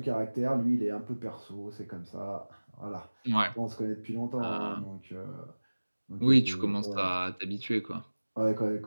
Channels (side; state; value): both; inverted; correlation -1.00